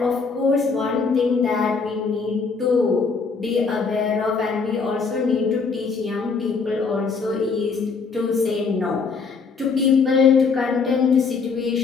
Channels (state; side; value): quieter; right; 5.0 dB